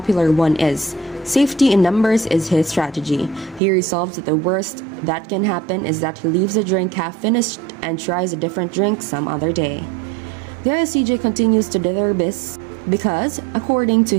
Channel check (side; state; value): left; drops out; at 3.6 s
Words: one is. Safety in numbers is his strategy. He resolves that the worst that can happen is that he leaves a drink half finished and tries a different drink some other day. The ISTJ continues to do their best because, according to